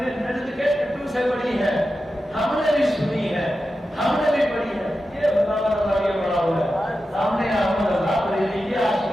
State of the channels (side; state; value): both; normal; correlation 0.91